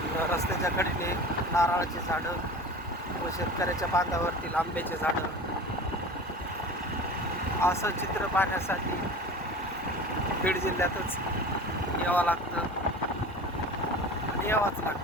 रस्त्याच्या कडेने नारळाची झाडं व शेतकऱ्याच्या बांधावरतील आंब्याचे झाडं, असं चित्र पाहण्यासाठी बीड जिल्ह्यातच यावं लागतं आणि यावंच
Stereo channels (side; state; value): both; normal; correlation 0.36